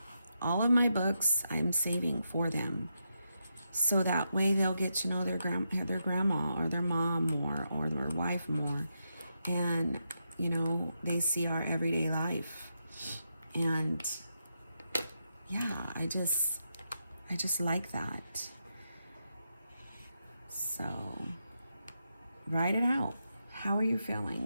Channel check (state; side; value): inverted; both; correlation -0.84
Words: all of my books I'm saving for them, so that way they'll get to know their grandma or their mom more, or their wife more, and, you know, they see our everyday life. And yeah, I just like that. So write it out. How are you